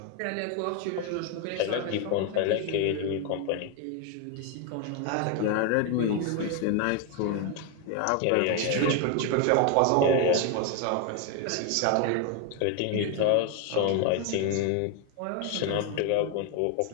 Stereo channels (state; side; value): different; both; correlation 0.01